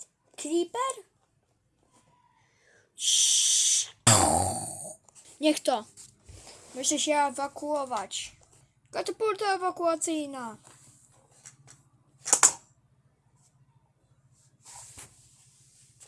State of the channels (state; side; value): identical; both; correlation 1.00